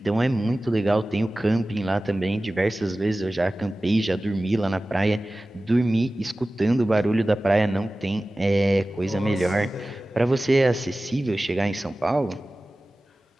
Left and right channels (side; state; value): both; normal; correlation 0.97